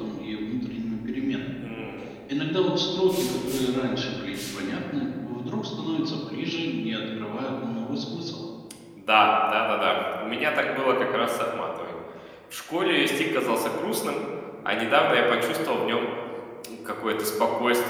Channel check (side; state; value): both; identical; correlation 1.00